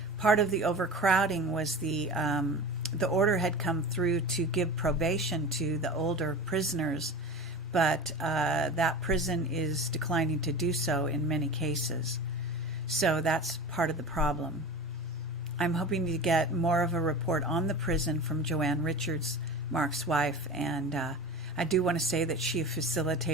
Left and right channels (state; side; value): normal; both; correlation 0.32